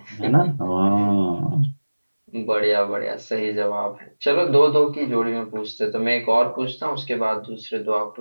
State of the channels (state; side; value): inverted; both; correlation -1.00